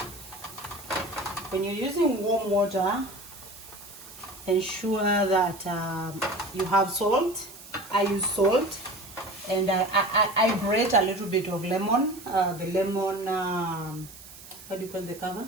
When you're using warm water, ensure that you have salt. I use salt, and I grate a little bit of lemon. The lemon, what do you call the cover?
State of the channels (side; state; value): right; noise; hiss, 18 dB below the sound